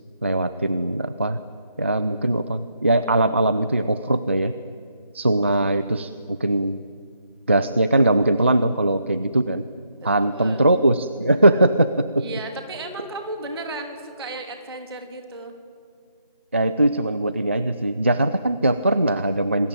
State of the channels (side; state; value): both; inverted; correlation -0.77